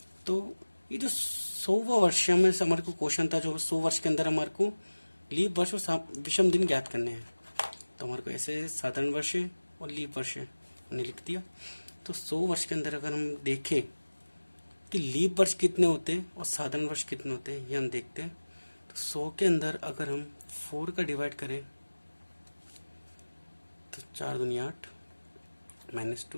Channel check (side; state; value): both; inverted; correlation -1.00